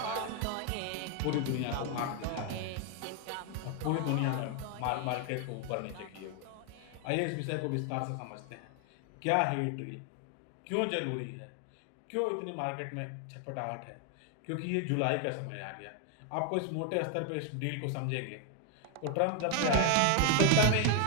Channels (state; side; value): different; both; correlation 0.01